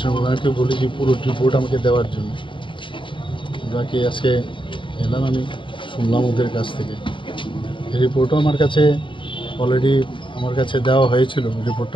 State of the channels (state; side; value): late; right; 0.24 ms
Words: ওনাকে বলেছি পুরো রিপোর্ট আমাকে দেওয়ার জন্য। বাকি আজকে এলাম, আমি শুনলাম ওদের কাছ থেকে। এই রিপোর্টও আমার কাছে অলরেডি দেওয়া হয়েছিল, রিপোর্টটা